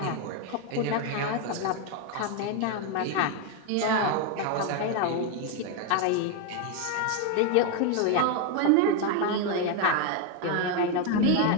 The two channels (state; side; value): different; both; correlation 0.01